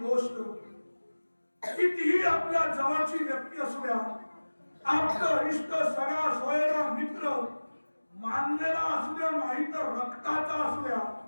कितीही आपल्या जवळची व्यक्ती असू द्या, आपलं इष्ट, सगळा सोयरा मित्र, मानलेला असू द्या नाही तर रक्ताचा असू द्या,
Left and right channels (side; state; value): both; inverted; correlation -1.00